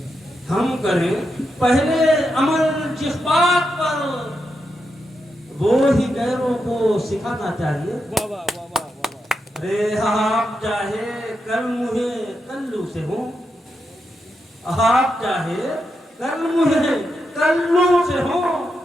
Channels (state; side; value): normal; both; correlation 0.85